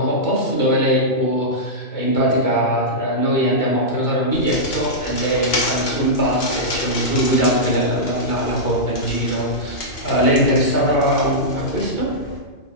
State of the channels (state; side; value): late; right; 2.5 ms